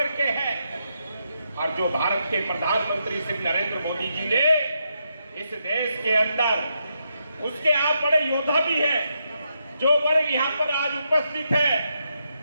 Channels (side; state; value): both; inverted; correlation -0.82